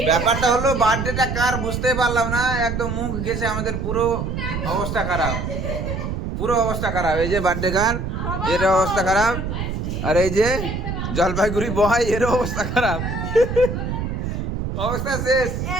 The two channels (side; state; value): right; noise; rumble, 3 dB below the sound